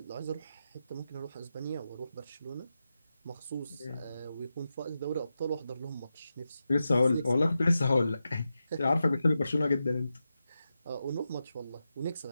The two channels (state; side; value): inverted; both; correlation -0.90